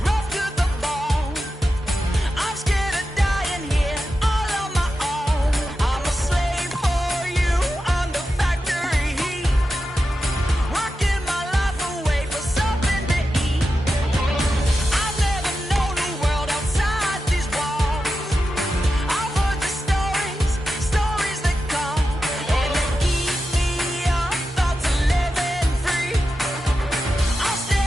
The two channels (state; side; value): normal; both; correlation 0.90